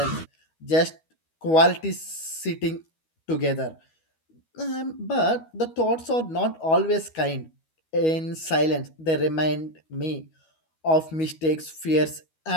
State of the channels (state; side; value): late; right; 12 ms